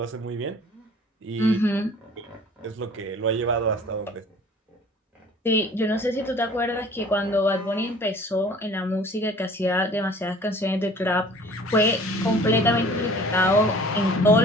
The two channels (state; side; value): normal; both; correlation 0.49